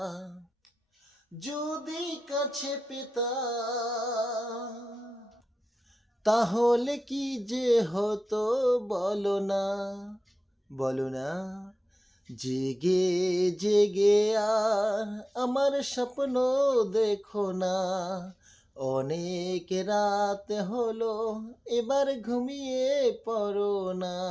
যদি কাছে পেতাম তাহলে কি যে হতো বলো না, বলো না। জেগে জেগে আর আমার স্বপ্ন দেখো না, অনেক রাত হলো এবার ঘুমিয়ে পড়ো না।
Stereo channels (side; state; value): both; normal; correlation 0.94